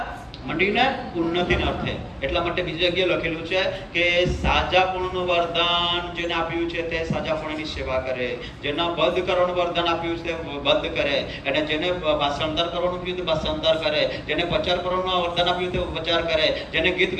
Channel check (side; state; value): both; identical; correlation 1.00